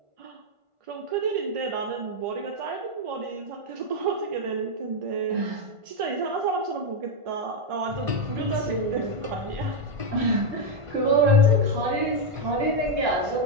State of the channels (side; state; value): left; late; 1.5 ms